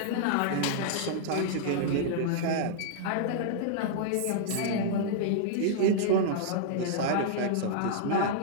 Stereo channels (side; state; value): both; different; correlation -0.01